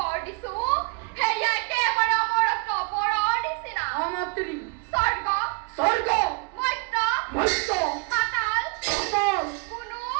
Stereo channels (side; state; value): left; quieter; 31.0 dB